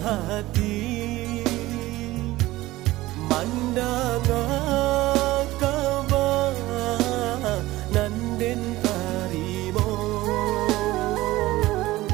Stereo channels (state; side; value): quieter; left; 17.8 dB